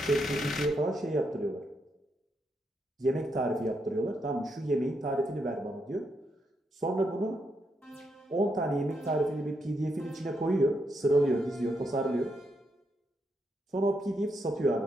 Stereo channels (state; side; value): normal; both; correlation 0.80